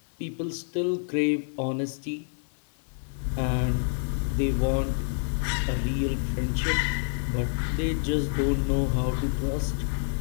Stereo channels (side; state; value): right; silent; digital silence